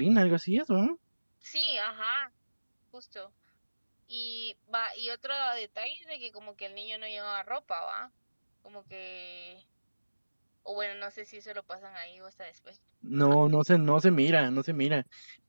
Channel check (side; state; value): both; inverted; correlation -1.00